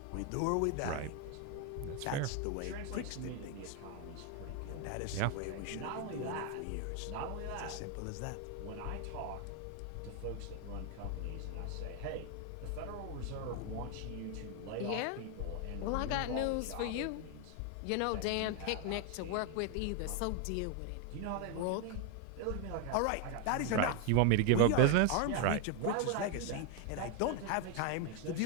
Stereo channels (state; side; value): different; both; correlation 0.01